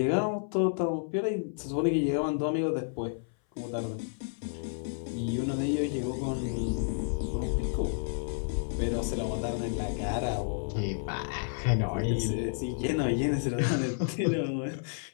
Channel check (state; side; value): silent; right; 57 dB below the other